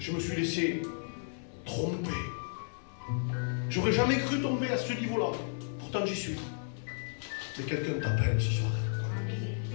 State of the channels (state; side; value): silent; right; 56 dB below the other